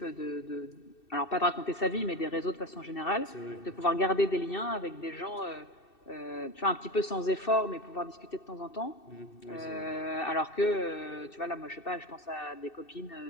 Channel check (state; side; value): late; right; 2.7 ms